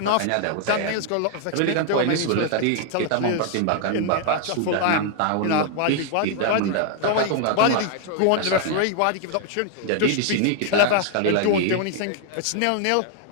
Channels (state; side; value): different; both; correlation 0.00